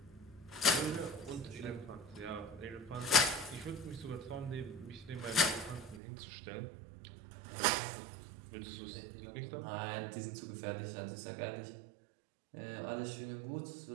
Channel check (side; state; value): left; drops out; at 6.0 s